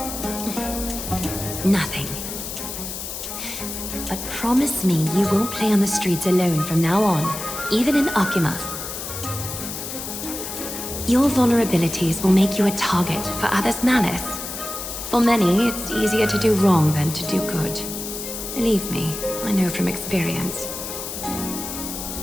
Nothing. But promise me you won't play on the streets alone from now on, even in Akima. Your vulnerabilities will make you a target for others' malice. For many, it's easier to do wrong than to do good. Believe me, I know from experience.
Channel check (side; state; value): left; noise; hiss, 7 dB below the sound